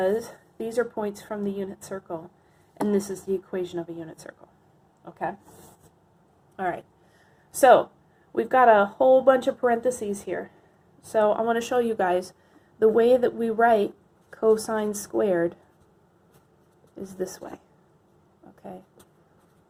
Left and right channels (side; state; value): both; identical; correlation 1.00